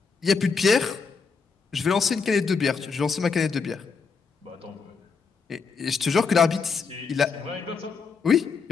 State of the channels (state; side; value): quieter; right; 5.2 dB